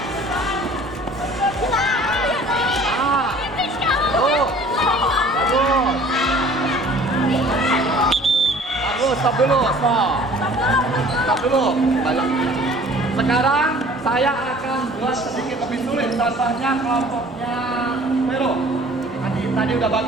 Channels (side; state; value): both; normal; correlation 0.50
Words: Bagus. Stop dulu. Stop dulu. Balik. Sekarang saya akan buat sedikit lebih sulit. Contohnya kelompoknya Vero. Tadi udah